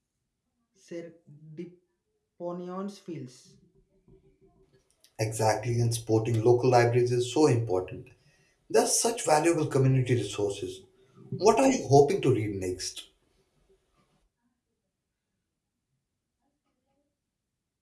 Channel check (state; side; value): identical; both; correlation 1.00